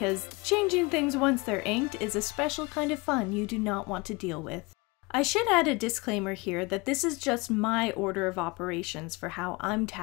changing things once they're inked is a special kind of fun you do not want to deal with. I should add a disclaimer here that this is just my order of operations for how I'm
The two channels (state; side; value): quieter; right; 26.1 dB